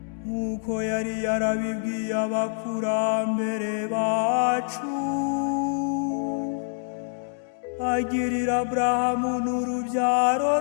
nk'uko yari yarabibwiye abakurambere bacu agirira Aburahamu n'urubyaro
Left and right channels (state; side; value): silent; right; digital silence